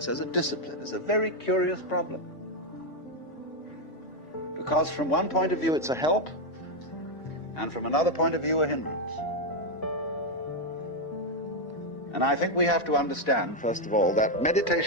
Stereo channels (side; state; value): right; late; 4.1 ms